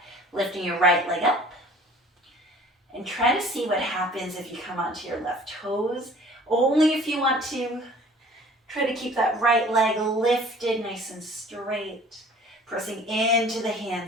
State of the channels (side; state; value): both; normal; correlation 0.49